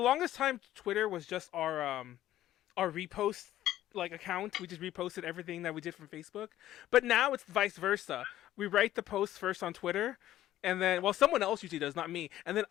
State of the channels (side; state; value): right; quieter; 13.4 dB